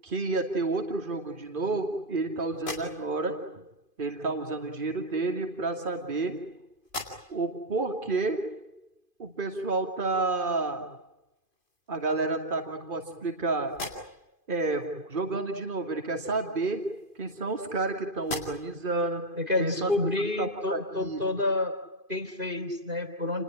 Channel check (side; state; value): left; late; 2.5 ms